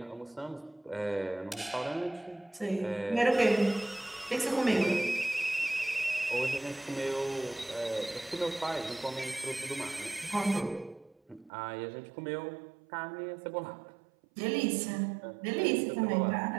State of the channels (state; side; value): drops out; left; at 11.5 s